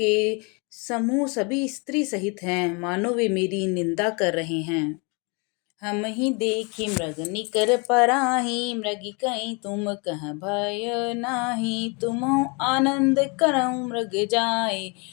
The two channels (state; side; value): quieter; right; 32.0 dB